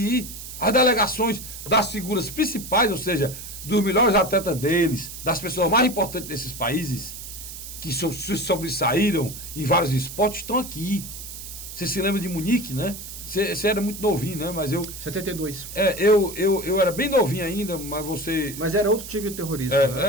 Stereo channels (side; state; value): right; noise; hiss, 11 dB below the sound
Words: As delegações das figuras principais, ou seja, dos melhores atletas deles, das pessoas mais importantes desses países, que se sobressaíram em vários esportes, estão aqui. Você se lembra de Munique, né? Você era muito novinho, né? Mas 72. Eu era bem novinho ainda, mas você... Mas era outro tipo de terrorismo.